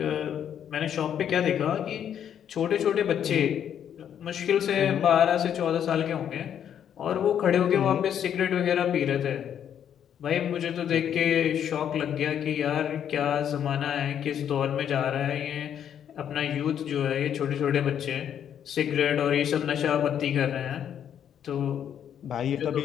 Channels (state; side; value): quieter; right; 9.2 dB